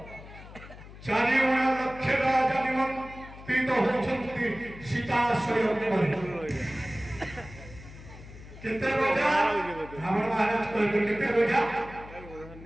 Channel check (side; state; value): left; noise; hum, 17 dB below the sound